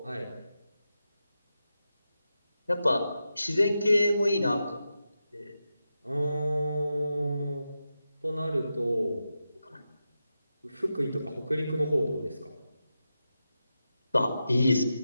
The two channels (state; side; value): inverted; both; correlation -0.90